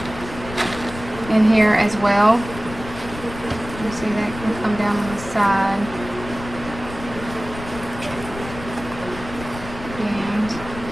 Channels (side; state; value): left; noise; rumble, 12 dB below the sound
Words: in here as well. You see that can come down on the side. And